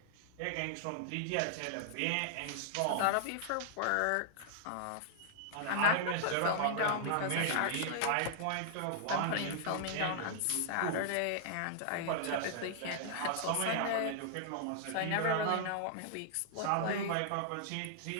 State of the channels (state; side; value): different; both; correlation -0.01